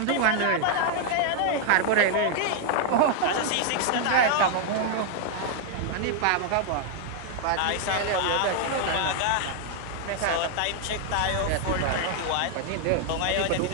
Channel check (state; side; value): different; both; correlation 0.00